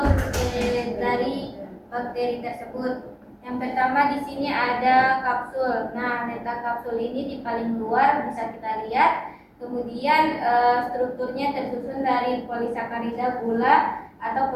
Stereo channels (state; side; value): identical; both; correlation 1.00